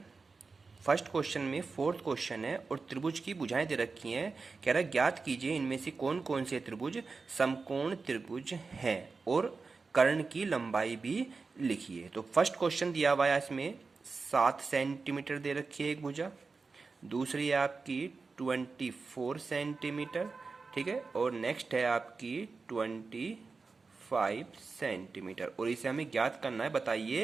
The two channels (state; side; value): quieter; left; 4.3 dB